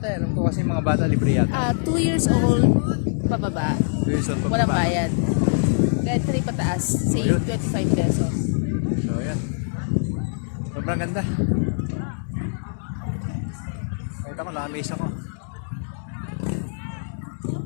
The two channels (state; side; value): silent; right; digital silence